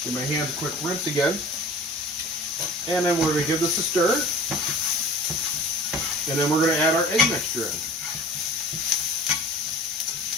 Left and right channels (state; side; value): normal; both; correlation 0.42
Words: Give my hands a quick rinse again. And then we're going to give this a stir. And then we're going to add our egg mixture in.